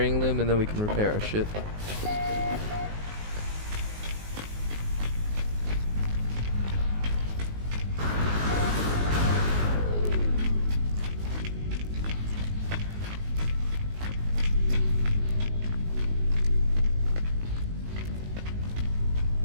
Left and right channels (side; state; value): left; late; 19 ms